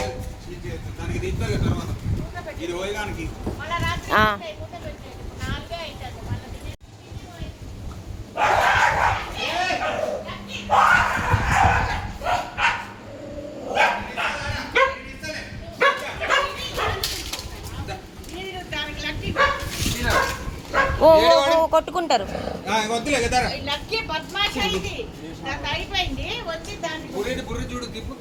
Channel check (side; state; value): both; identical; correlation 1.00